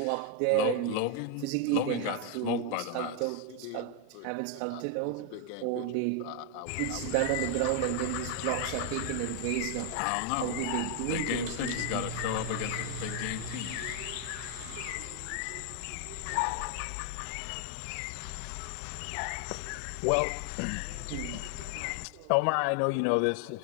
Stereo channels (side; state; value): both; different; correlation 0.00